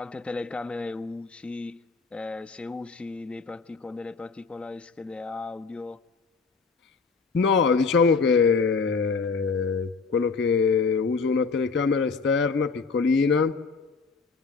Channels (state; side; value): quieter; right; 4.7 dB